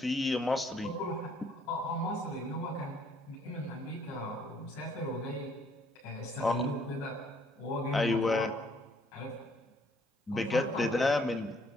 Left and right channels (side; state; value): both; normal; correlation 0.64